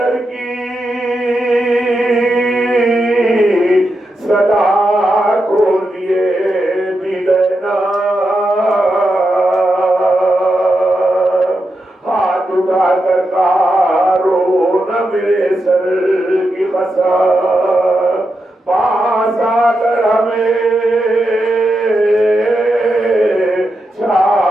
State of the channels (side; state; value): both; normal; correlation 0.87